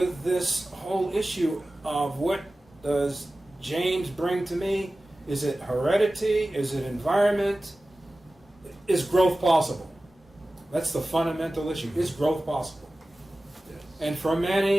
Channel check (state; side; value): normal; both; correlation 0.96